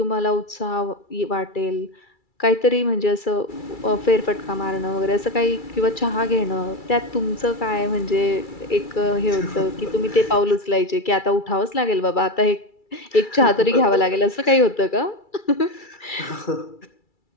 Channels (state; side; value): late; right; 2.3 ms